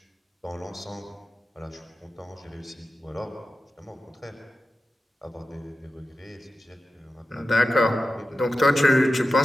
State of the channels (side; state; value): both; normal; correlation 0.93